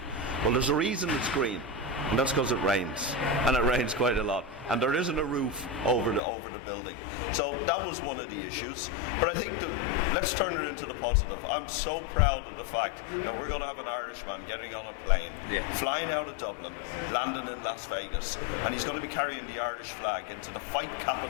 Well, there's a reason it's green. And that's because it rains, and it rains quite a lot, and there isn't a roof over the building. So that was one of the issues. But I think let's turn it into the positive. I'm so proud of the fact that we're going to have an Irishman getting on a plane, flying out of Dublin, landing in Las Vegas, and he's going to be carrying the Irish flag into the fight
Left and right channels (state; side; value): drops out; right; at 6.2 s